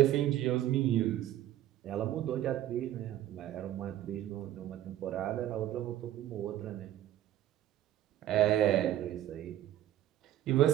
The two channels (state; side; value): quieter; left; 12.9 dB